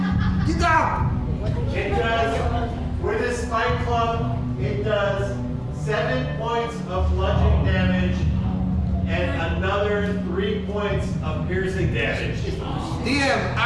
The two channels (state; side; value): identical; both; correlation 1.00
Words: Get up! It does, with this spike club, it does 7 points of bludgeoning damage and another 3 points of piercing damage. DM,